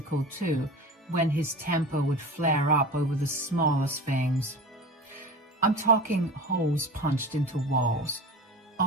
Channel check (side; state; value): both; normal; correlation 0.32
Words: too, when his temper would flare up over the smallest things. I'm talking holes punched into walls,